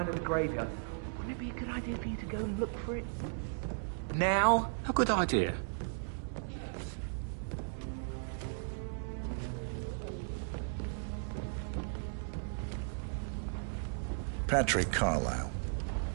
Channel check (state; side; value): silent; left; digital silence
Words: at the graveyard. Would it be a good idea for you to go and look for it? Now? A good idea. Yes. Patrick Carlyle,